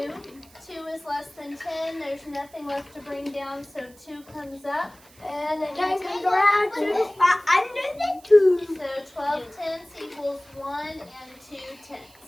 2 is less than 10. There's nothing left to bring down, so 2 comes up. And the 10 comes around to under the 2. So 12 tenths equals 1 and 2 tenths.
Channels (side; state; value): right; noise; hiss, 25 dB below the sound